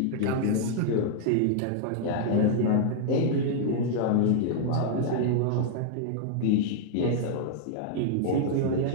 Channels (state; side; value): different; both; correlation -0.01